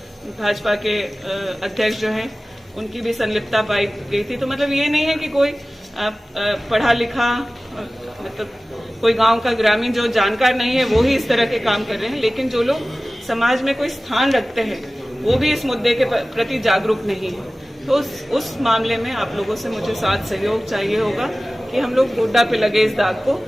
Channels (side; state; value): both; normal; correlation 0.97